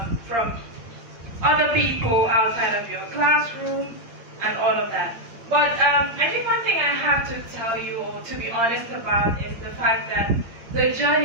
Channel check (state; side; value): late; left; 8.7 ms